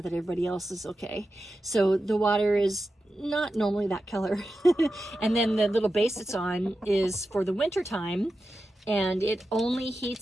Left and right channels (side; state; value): both; normal; correlation 0.91